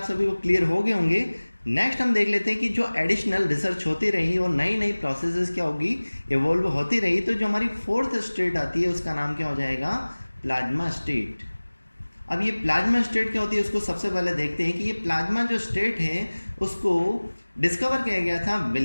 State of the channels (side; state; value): both; inverted; correlation -1.00